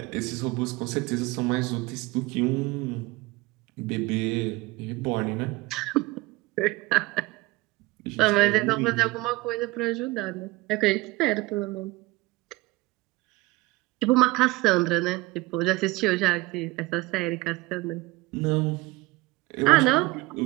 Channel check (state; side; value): quieter; left; 21.5 dB